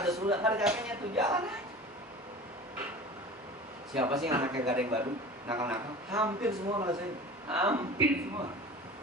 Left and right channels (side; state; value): both; normal; correlation 0.37